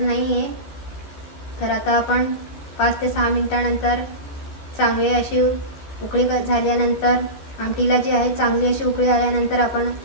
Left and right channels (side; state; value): right; late; 14 ms